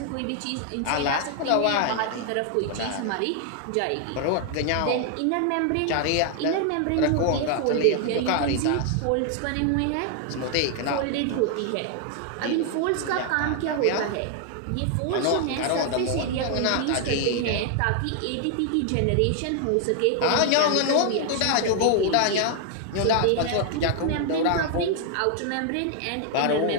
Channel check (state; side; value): different; both; correlation 0.00